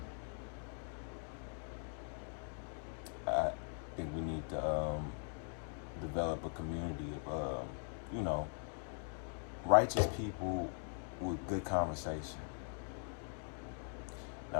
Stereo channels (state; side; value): silent; right; 50 dB below the other